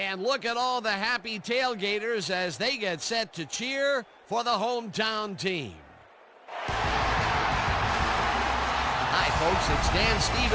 look at all the happy tailgaters as they get set to cheer for the hometown team. Hi, folks, it's Dan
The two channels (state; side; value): identical; both; correlation 1.00